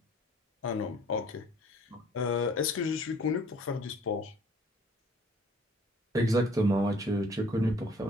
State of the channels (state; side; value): normal; both; correlation 0.56